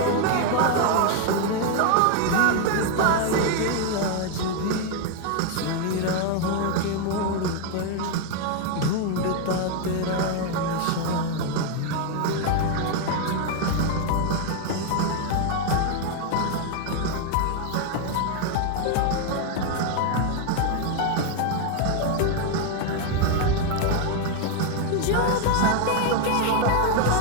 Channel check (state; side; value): different; both; correlation 0.01